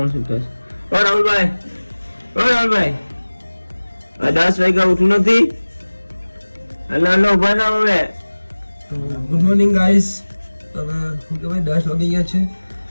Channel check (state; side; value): inverted; both; correlation -1.00